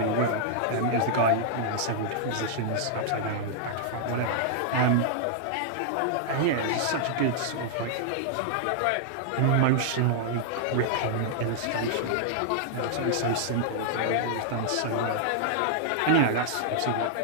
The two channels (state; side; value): different; both; correlation -0.01